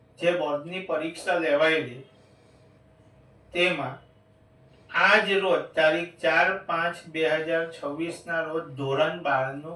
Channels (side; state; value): both; identical; correlation 1.00